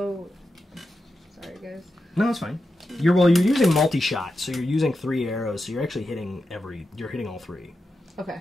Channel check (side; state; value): both; normal; correlation 0.89